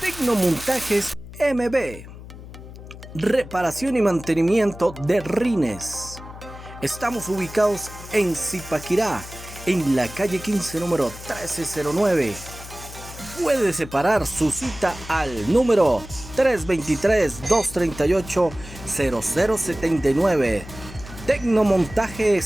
Tecnomontajes MB. Reparación y mantenimiento de rines. Estamos ubicados en Zipaquirá, en la calle 15, número 1309. Puede separar su cita al número 323-238-0079.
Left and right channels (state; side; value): noise; left; hum, 15 dB below the sound